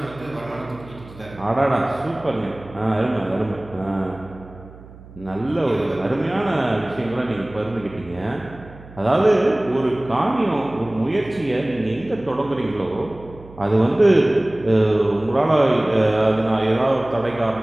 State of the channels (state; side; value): noise; right; hum, 19 dB below the sound